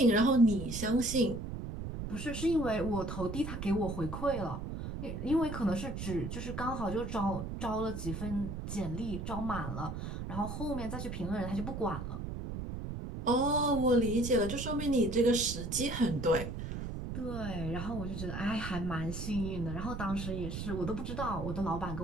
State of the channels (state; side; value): noise; right; rumble, 6 dB below the sound